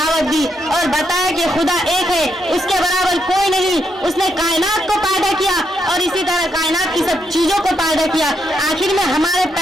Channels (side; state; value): both; normal; correlation 0.79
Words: दी और बताया कि खुदा एक है, उसके बराबर कोई नहीं। उसने कायनात को पैदा किया और इसी तरह कायनात की सब चीजों को पैदा किया। आखिर में हमारे